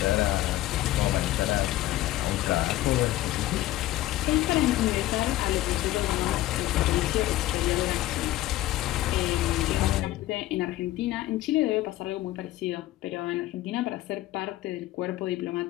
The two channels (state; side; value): quieter; right; 15.7 dB